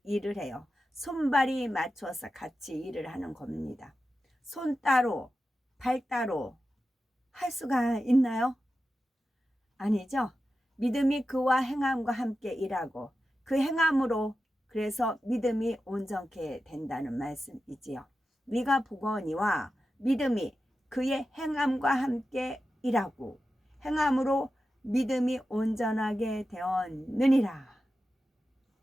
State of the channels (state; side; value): normal; both; correlation 0.92